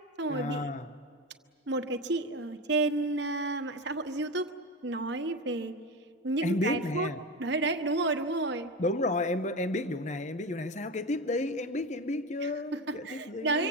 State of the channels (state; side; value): normal; both; correlation 0.22